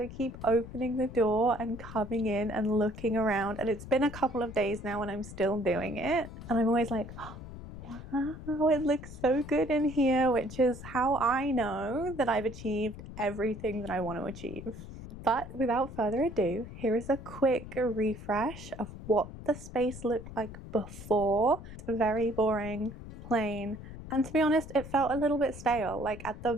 keep opening the door and coming in and looking around, and it's been a couple of days now and I'm still doing it. And I'm always like, oh, wow, it looks so good in here, which is how I know that I've achieved everything that I want to achieve. But without further ado, here is a quick refresh of what the space looked like before. It's very boring, plain, and to be honest, it felt a little bit stale. Like at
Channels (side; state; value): left; noise; rumble, 12 dB below the sound